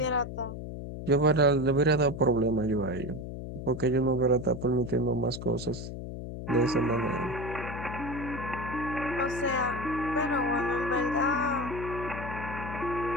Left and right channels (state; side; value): noise; left; hum, 8 dB below the sound